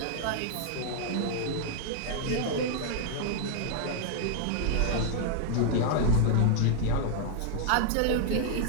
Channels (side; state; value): both; different; correlation -0.01